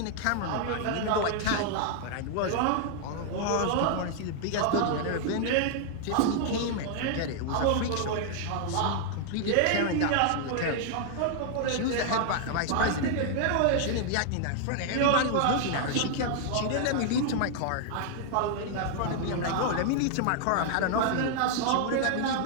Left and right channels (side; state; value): both; different; correlation 0.00